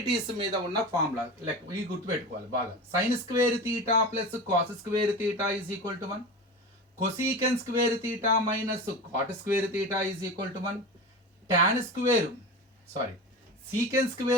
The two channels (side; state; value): both; normal; correlation 0.28